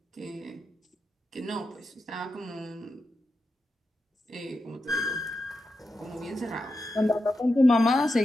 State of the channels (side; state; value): both; normal; correlation 0.89